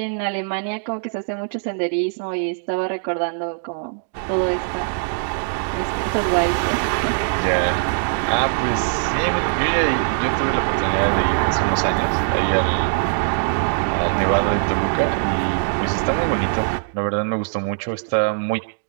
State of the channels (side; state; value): left; silent; digital silence